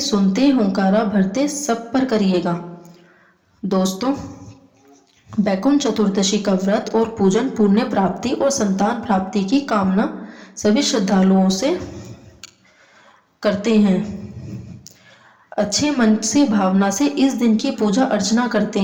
सुनते, हुंकारा भरते सब पर करिएगा। दोस्तों, बैकुंठ चतुर्दशी का व्रत और पूजन पुण्य प्राप्ति और संतान प्राप्ति की कामना सभी श्रद्धालुओं से करते हैं। अच्छे मन से, भावना से इस दिन की पूजा अर्चना करते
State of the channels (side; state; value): both; identical; correlation 1.00